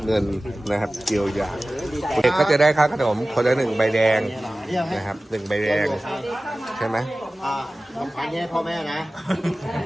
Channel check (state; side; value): normal; both; correlation 0.97